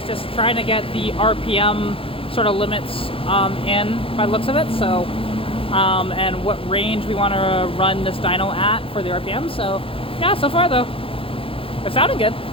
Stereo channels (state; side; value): late; right; 0.27 ms